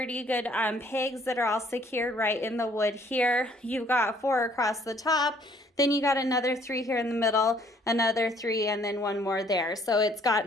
good pegs that are all secured right in the wood here. You've got 4 across the top, then you got another 3 here in the middle, another 3, and then 1 more there. So it's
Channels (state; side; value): normal; both; correlation 0.61